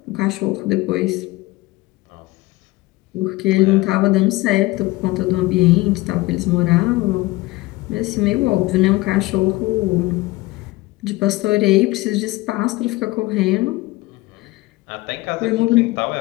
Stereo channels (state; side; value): quieter; right; 20.2 dB